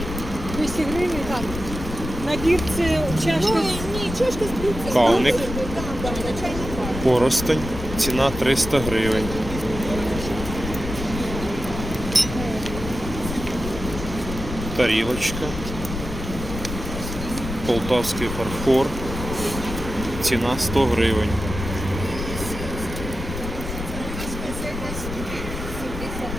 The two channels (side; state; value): left; noise; rumble, 7 dB below the sound